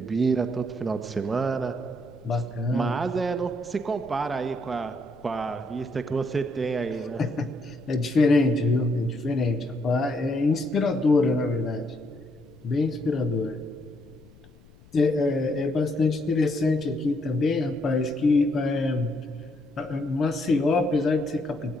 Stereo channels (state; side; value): noise; left; rumble, 25 dB below the sound